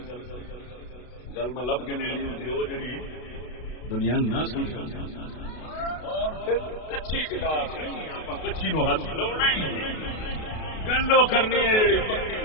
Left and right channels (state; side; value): late; right; 32 ms